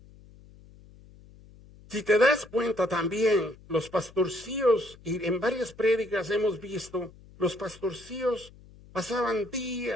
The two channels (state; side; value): noise; left; hum, 23 dB below the sound